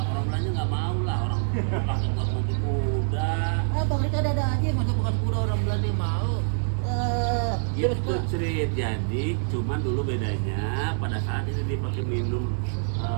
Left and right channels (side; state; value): left; silent; digital silence